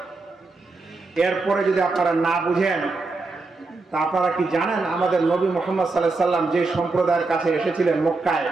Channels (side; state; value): left; quieter; 3.6 dB